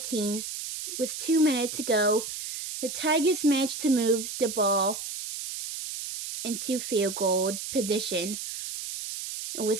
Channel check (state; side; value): noise; right; hiss, 7 dB below the sound